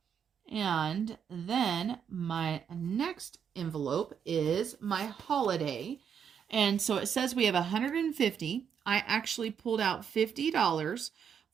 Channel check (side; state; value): left; quieter; 7.7 dB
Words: And then my next envelope is my holiday. And so it says we have 150. I actually pulled out $50